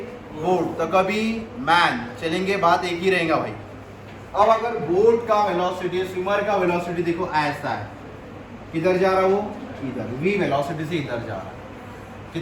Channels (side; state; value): both; identical; correlation 1.00